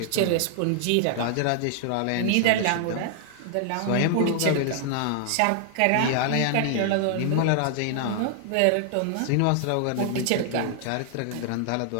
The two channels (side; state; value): both; different; correlation 0.00